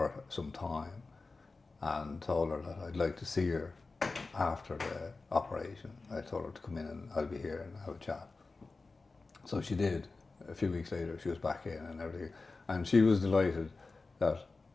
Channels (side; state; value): right; quieter; 3.8 dB